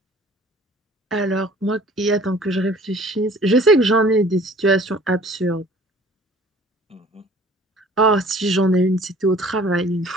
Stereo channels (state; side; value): normal; both; correlation 0.51